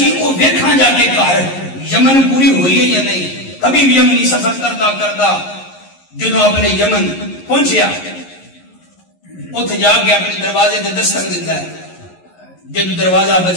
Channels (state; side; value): late; right; 11 ms